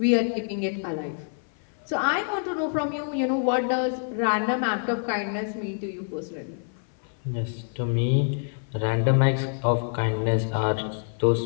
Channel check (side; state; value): right; silent; 56 dB below the other